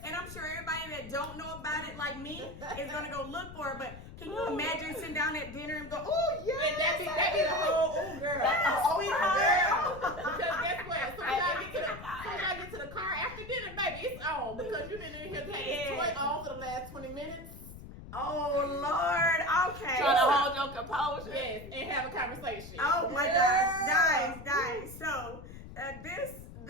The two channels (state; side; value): noise; left; rumble, 14 dB below the sound